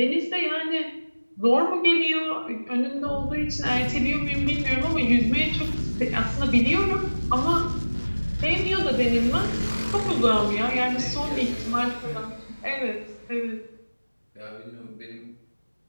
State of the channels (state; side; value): inverted; both; correlation -1.00